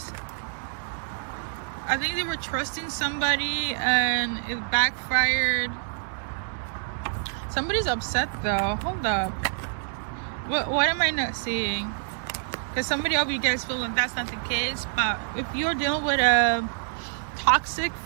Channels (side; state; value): left; silent; digital silence